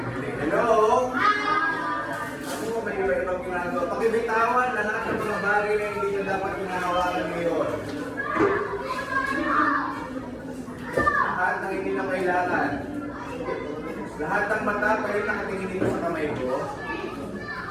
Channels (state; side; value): identical; both; correlation 1.00